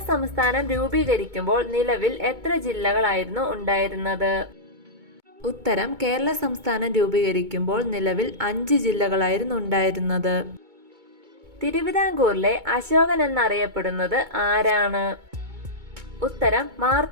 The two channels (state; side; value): late; left; 2.2 ms